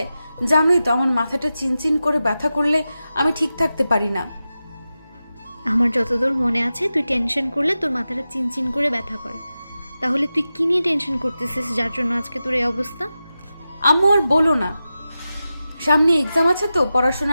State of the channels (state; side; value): inverted; both; correlation -0.93